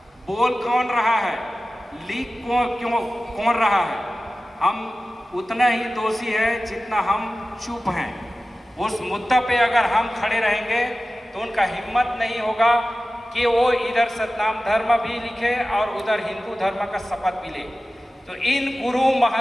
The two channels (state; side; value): normal; both; correlation 0.95